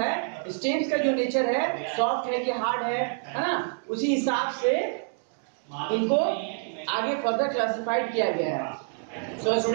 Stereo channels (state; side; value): silent; left; digital silence